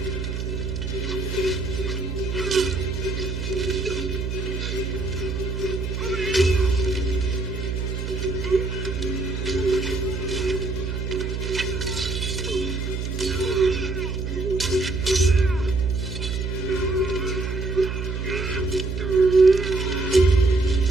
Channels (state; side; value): noise; right; hum, 3 dB below the sound